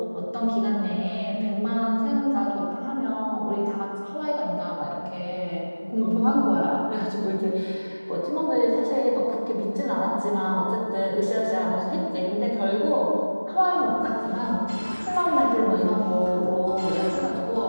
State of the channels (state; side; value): inverted; both; correlation -1.00